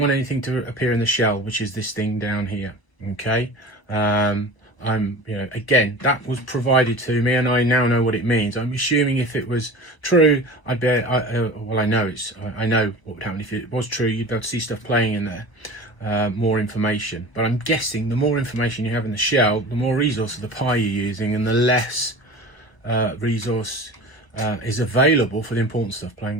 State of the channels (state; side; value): late; right; 1.2 ms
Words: anything to appear in the shell, which is this thing down here. Okay. Again, that was provided to me, and I now know what it means. I'm assuming if it was true, I'd be, well, I know what would happen if it was true. You'd be able to see stuff playing in there, more information. But I'm guessing the more information you have in the shell, the more resource of the Pi you're using, and the less resource is available for the important stuff,